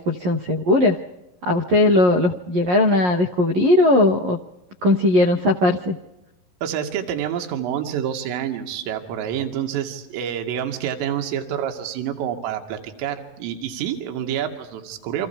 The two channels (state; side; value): late; left; 11 ms